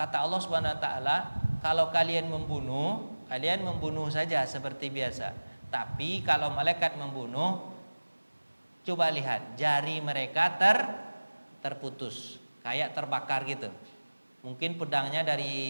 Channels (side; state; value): both; inverted; correlation -1.00